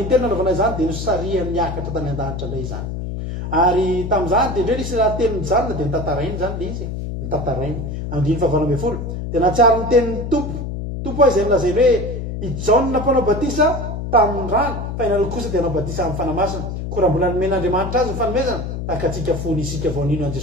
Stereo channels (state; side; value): noise; left; hum, 5 dB below the sound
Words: nanaovana izany dia nosaria miakatra tany an-danitra indray izany ary tamin'izany dia indray nisy raha teny mijanona dia nitantarainy zany le izy nitantarainy andiny fahavalombe folo dia natsiary ny tenin'ny tompo izay milazainy hoe ijaona mpanao batisa tamin'ny rano fa inalo kosa dia anao batisa amin'ny fanamasina ko raha mbola nomen'andriamanitra azy ny fanomezana tahaka atsika fony isika vaonino an